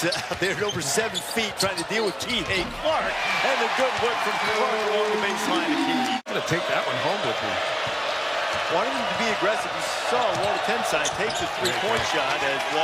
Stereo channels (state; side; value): identical; both; correlation 1.00